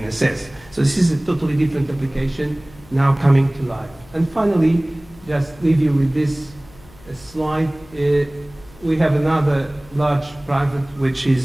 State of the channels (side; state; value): left; noise; hum, 24 dB below the sound